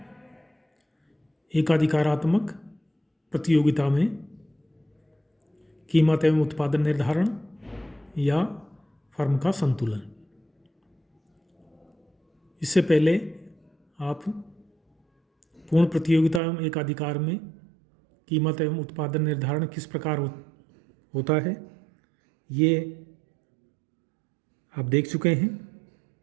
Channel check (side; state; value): left; drops out; at 16.4 s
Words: एकाधिकारात्मक प्रतियोगिता में कीमत एवं उत्पादन निर्धारण या फर्म का संतुलन। इससे पहले आप पूर्ण प्रतियोगिता एवं एकाधिकार में कीमत एवं उत्पादन निर्धारण किस प्रकार होता है ये आप देख चुके हैं।